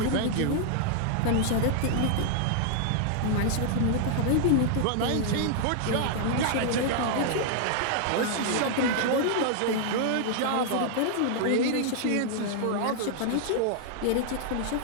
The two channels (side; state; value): both; different; correlation 0.00